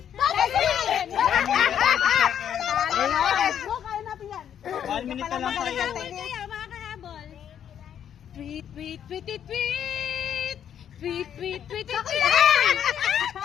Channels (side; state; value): right; quieter; 9.3 dB